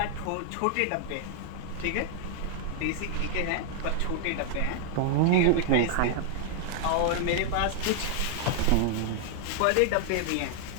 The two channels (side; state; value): both; different; correlation -0.01